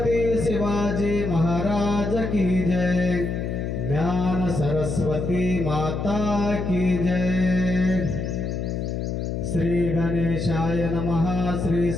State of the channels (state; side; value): noise; left; hum, 3 dB below the sound